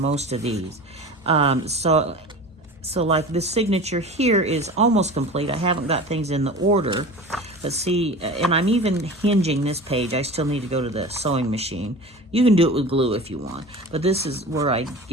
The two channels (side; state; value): both; normal; correlation 0.35